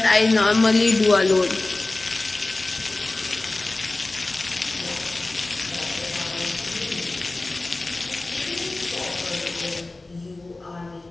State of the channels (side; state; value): right; quieter; 3.0 dB